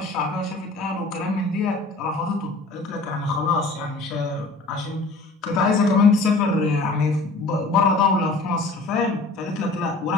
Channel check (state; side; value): quieter; right; 3.2 dB